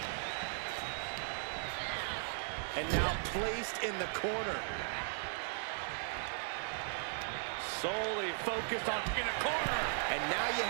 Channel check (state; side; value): silent; left; 53 dB below the other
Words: And now placed in the corner. Solely focused on in a corner. And now you